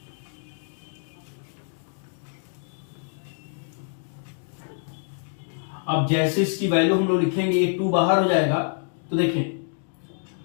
अब जैसे इसकी वैल्यू हम लोग लिखेंगे ये 2 बाहर हो जाएगा, तो देखें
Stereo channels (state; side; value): silent; right; 61 dB below the other